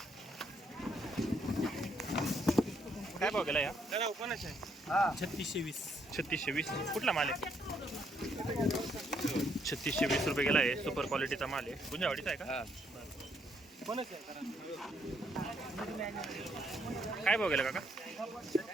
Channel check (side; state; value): both; normal; correlation 0.72